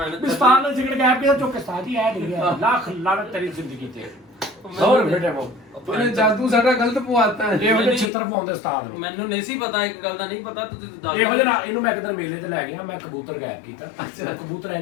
ਬਿਸਤਾਨ ਨੇ ਸਿਗਰਟ ਗਾਇਬ ਕੀਤਾ ਚੁੱਕ ਕੇ ਸਾਥੀ ਐ ਗਿਆ ਲੱਖ ਲਾਨਤ ਤੇਰੀ ਜ਼ਿੰਦਗੀ ਤੇ ਹੋਰ ਬੇਟੇ ਮੋ ਉਹਨੇ ਜਾਦੂ ਸਾਡਾ ਗਲਤ ਪਵਾਤਾ ਹੈ ਇਹੋ ਜਿਹੇ ਚਿੱਤਰ ਪਾਉਂਦੇ ਉਸਤਾਦ ਨੂੰ ਮੈਨੂੰ ਨਹੀਂ ਸੀ ਪਤਾ ਇੱਕ ਗੱਲ ਦਾ ਨਹੀਂ ਪਤਾ ਤੁਸੀਂ ਦੱਸ ਇਹੋ ਜਿਹਾ ਇਹਨੂੰ ਮੈਂ ਇੱਕ ਦਿਨ ਮੇਲੇ ਤੇ ਲੈ ਗਿਆ ਮੈਂ ਕਬੂਤਰ ਗਾਇਬ ਕੀਤਾ ਕਬੂਤਰ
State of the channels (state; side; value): drops out; right; at 8.1 s